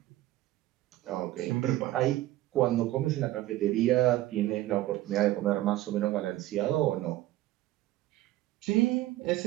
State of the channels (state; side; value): quieter; left; 15.8 dB